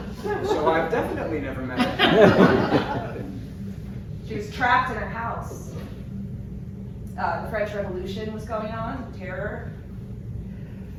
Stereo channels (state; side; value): identical; both; correlation 1.00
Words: So I've definitely never met her. She was trapped in her house. The French Revolution was going on, terror.